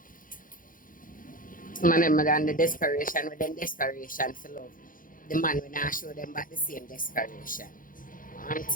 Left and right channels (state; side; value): late; right; 0.40 ms